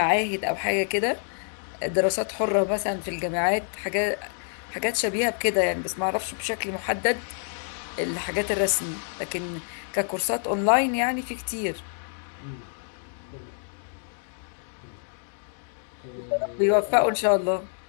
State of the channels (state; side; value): silent; right; 60 dB below the other